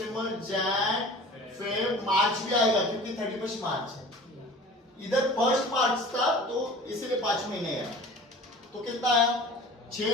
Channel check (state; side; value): normal; both; correlation 0.42